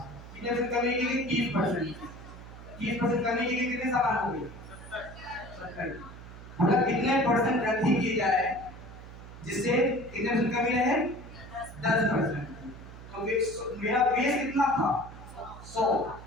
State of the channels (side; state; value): right; noise; hum, 15 dB below the sound